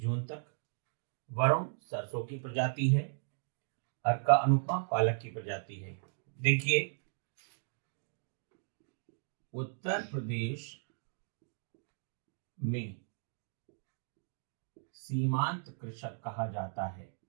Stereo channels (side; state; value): left; silent; digital silence